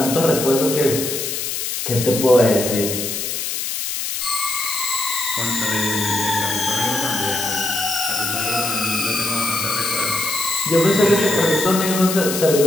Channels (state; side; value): noise; left; hiss, 3 dB below the sound